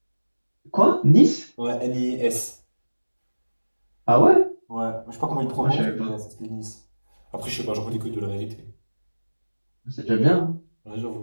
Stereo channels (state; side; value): inverted; both; correlation -1.00